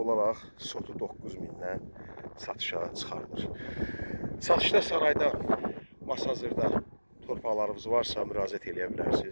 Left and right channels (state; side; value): inverted; both; correlation -1.00